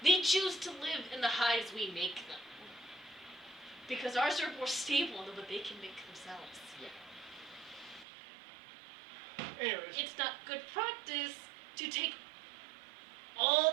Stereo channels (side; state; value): left; drops out; at 8.1 s